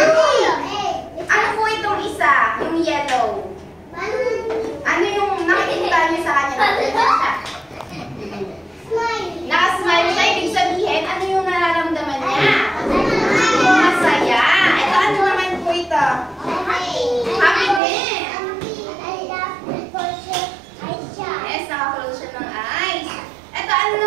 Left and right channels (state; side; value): drops out; left; at 17.8 s